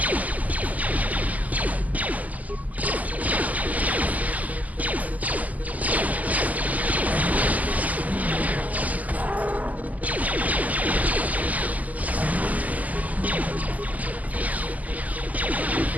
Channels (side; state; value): left; late; 0.077 ms